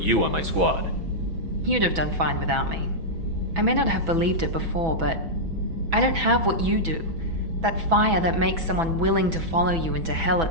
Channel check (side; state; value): left; late; 6.1 ms